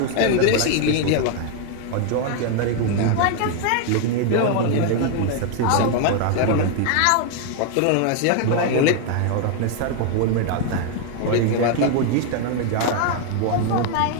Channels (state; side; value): different; both; correlation 0.01